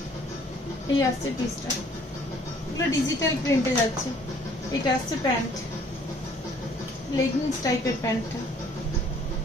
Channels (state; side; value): normal; both; correlation 0.58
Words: এই আসছে পিসটা, এগুলো ডিজিটাল প্রিন্টে যাচ্ছে। এটা আসছে প্যান্ট, লেগিংস টাইপের প্যান্টটা।